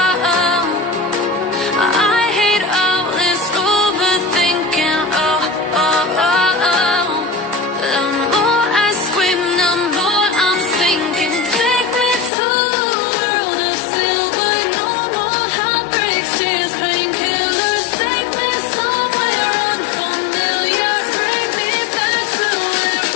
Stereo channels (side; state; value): right; drops out; at 12.3 s